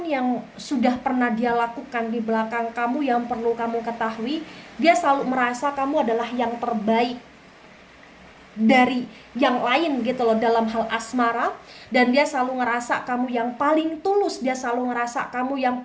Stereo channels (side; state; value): both; identical; correlation 1.00